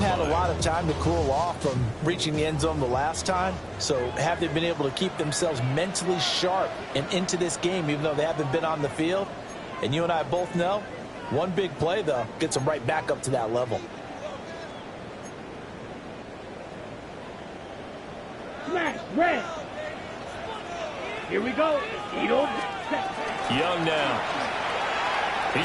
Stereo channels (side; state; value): both; identical; correlation 1.00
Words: a lot of time to cool off from reaching the end zone the last time. So have they been able to keep themselves mentally sharp and into this game, even though they haven't been on the field? And you and I both know, one big play, though, gets them right back up to that level. Smash, red. Here we go. Young now.